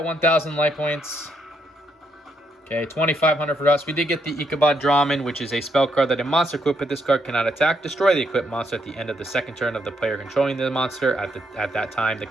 1,000 life points. Okay, 2,500 for us. We did get the Ichabod Draman, which is a spell card that a monster equipped with this card cannot attack. Destroy the equipped monster at the end of the second turn of the player controlling the monster. At that time, the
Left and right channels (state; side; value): normal; both; correlation 0.76